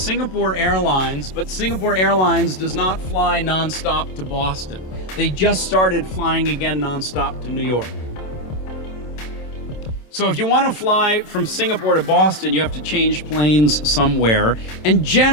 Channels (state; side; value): late; right; 27 ms